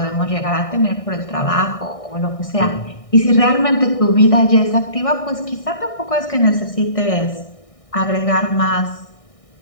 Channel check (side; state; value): right; late; 1.6 ms